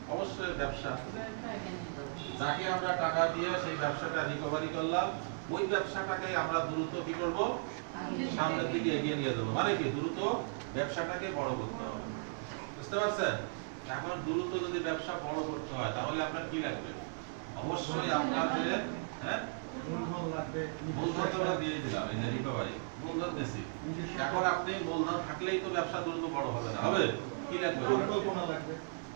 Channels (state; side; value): silent; left; digital silence